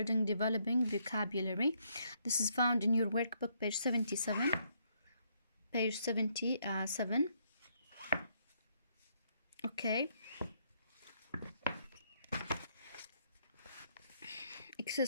developing vocabulary. This is found in your workbook, page 77. Page 77. Okay.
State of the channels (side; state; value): both; inverted; correlation -0.72